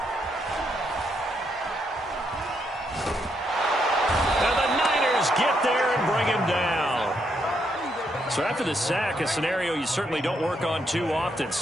And the Niners get there and bring him down. So after the sack, a scenario you certainly don't work on too often.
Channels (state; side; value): normal; both; correlation 0.77